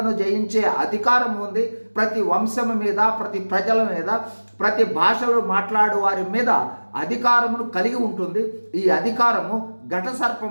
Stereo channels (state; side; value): inverted; both; correlation -1.00